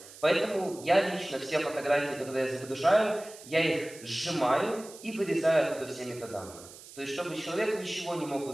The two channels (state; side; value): noise; right; hiss, 18 dB below the sound